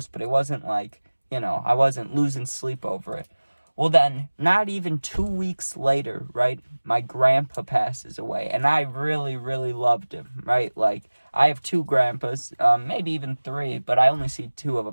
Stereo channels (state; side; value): inverted; both; correlation -1.00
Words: but it wasn't like, I wasn't losing sleep over it. Well, then, not even 2 weeks later, right, my grandpa passes away, and I really loved him, right? Like, I have 2 grandpas, maybe even 3, but I only see 2 of